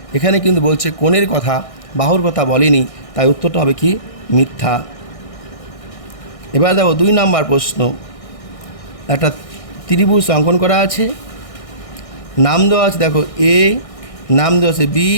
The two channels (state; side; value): late; right; 1.6 ms